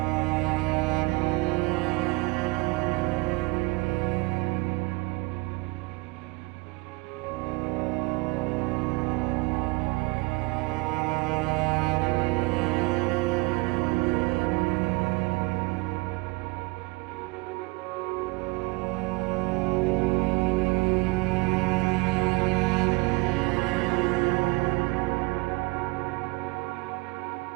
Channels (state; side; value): quieter; left; 24.9 dB